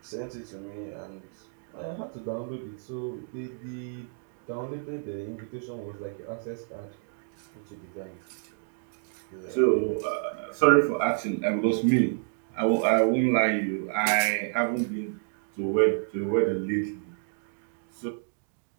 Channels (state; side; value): silent; left; digital silence